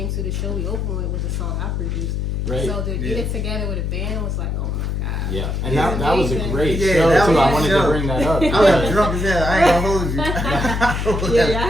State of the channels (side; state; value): left; noise; hum, 1 dB below the sound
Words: to the show we opened with was a song I produced. Right. So to get it together with a band was like, oh my god. Yeah, and that was a great show too. I wanted to bring that up. I was drunk as hell. I ain't gonna hold you. I